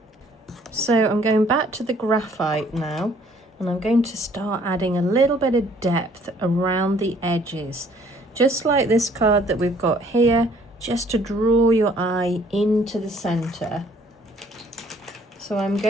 So I'm going back to the graphite now, and I'm going to start adding a little bit of depth around the edges, just like this card that we've got here, just to draw your eye into the center. So I'm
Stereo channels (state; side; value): normal; both; correlation 0.60